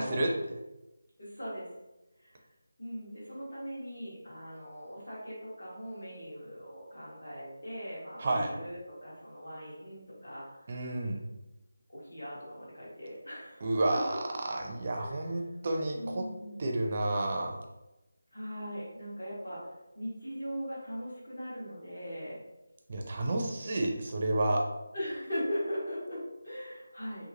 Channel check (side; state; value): both; inverted; correlation -0.92